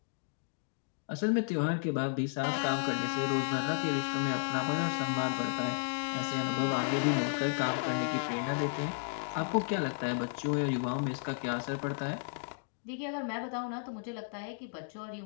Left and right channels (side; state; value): right; silent; digital silence